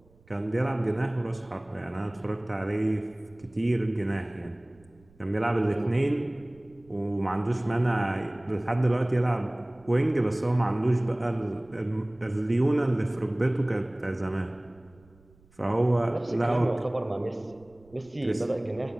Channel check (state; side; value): noise; right; rumble, 29 dB below the sound